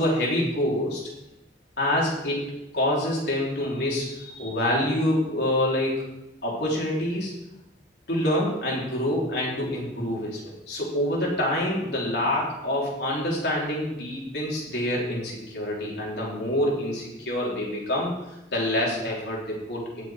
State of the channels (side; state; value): both; normal; correlation 0.29